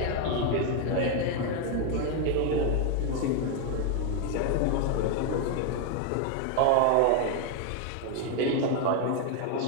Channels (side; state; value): both; different; correlation 0.01